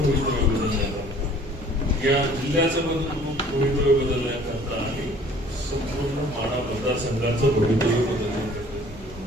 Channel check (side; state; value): both; normal; correlation 0.53